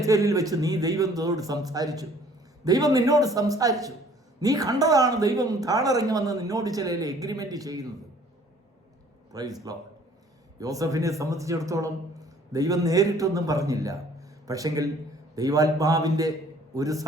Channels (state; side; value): normal; both; correlation 0.55